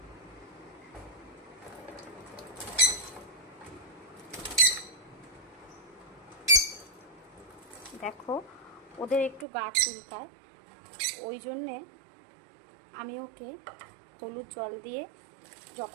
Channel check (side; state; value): left; drops out; at 9.5 s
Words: দেখো, ওদের একটু গা চুলকায়, ওই জন্যে আমি ওকে হলুদ জল দিয়ে